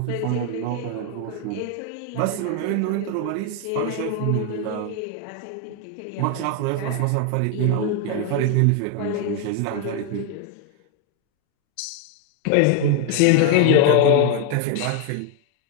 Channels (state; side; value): different; both; correlation 0.01